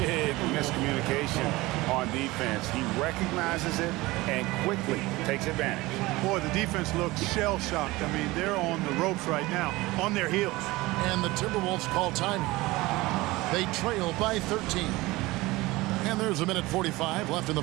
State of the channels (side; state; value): left; quieter; 20.4 dB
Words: miscommunication on defense. He recognizes it and quickly takes advantage. Boy, the defense looks shell-shocked. I mean, they're on the ropes right now, on their heels. And the Timberwolves call timing. They trail by 13. And there's 1:45 left in the